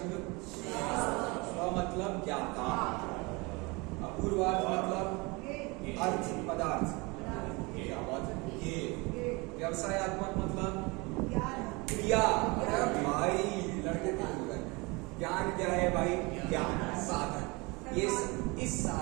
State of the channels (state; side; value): quieter; left; 26.5 dB